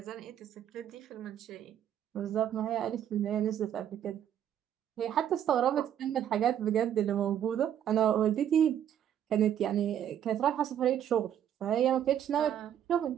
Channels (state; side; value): quieter; left; 10.0 dB